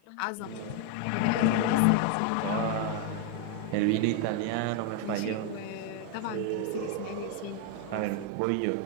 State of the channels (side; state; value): both; different; correlation 0.01